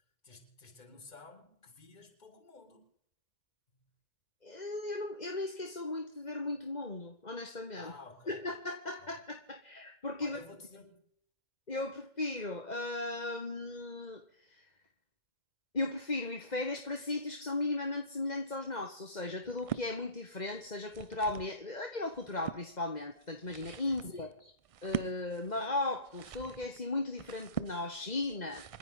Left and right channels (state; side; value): late; right; 2.1 ms